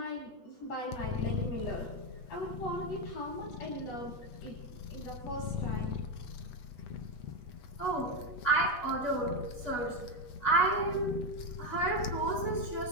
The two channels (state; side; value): late; right; 8.2 ms